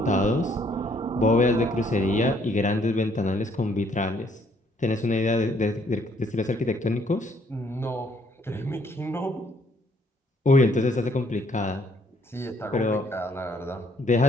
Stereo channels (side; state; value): both; normal; correlation 0.66